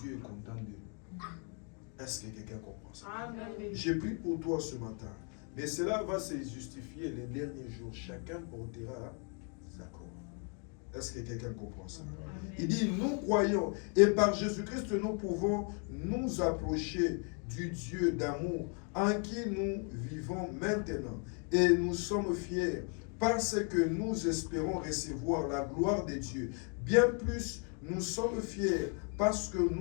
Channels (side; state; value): right; quieter; 39.1 dB